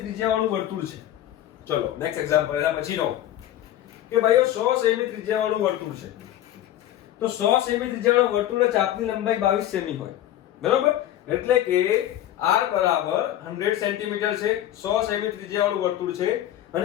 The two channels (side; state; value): right; quieter; 12.6 dB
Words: ત્રિજ્યાવાળું વર્તુળ છે. ચલો નેક્સ્ટ એક્ઝામ્પલ એના પછીનો કે ભાઈઓ 100 સેમી ત્રિજ્યાવાળું વર્તુળ છે. તો 100 સેમી ત્રિજ્યાવાળા વર્તુળના ચાપની લંબાઈ 22 સેમી હોય, બરાબર? એટલે કે r બરાબર 100 સેન્ટીમીટર છે. 100 સેમી ત્રિજ્યાવાળું વર્તુળ છે